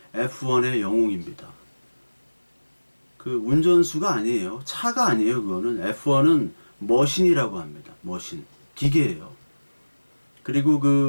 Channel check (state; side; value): inverted; both; correlation -1.00